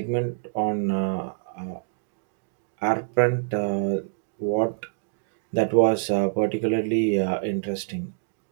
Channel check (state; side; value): silent; left; digital silence